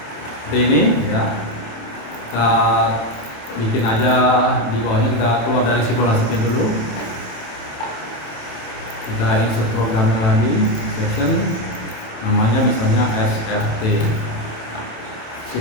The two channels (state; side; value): late; right; 27 ms